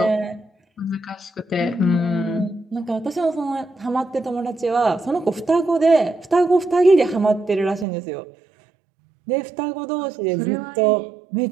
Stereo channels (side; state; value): left; drops out; at 7.9 s